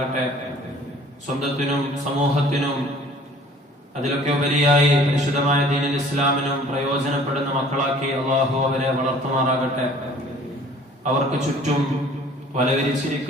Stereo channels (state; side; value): normal; both; correlation 0.51